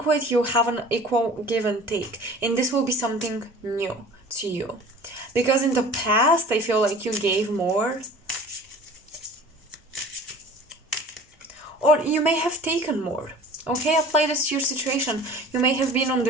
You have an equal give and take, and this will be something new to you, because in the past I feel like you gave more, or you may have taken more. Okay, apply this to your situation. You may have been on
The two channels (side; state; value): both; normal; correlation 0.43